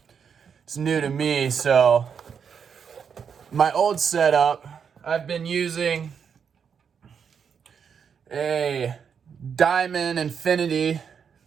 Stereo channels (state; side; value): quieter; left; 6.9 dB